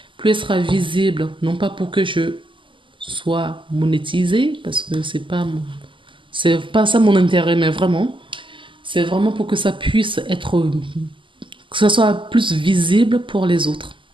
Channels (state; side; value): late; left; 0.25 ms